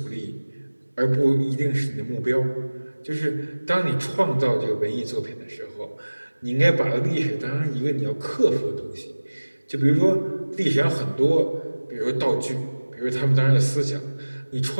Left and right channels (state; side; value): inverted; both; correlation -1.00